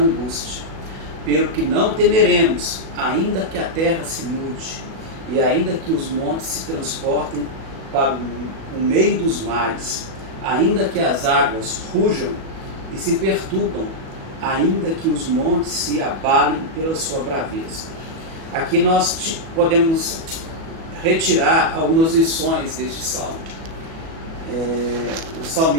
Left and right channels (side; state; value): left; late; 37 ms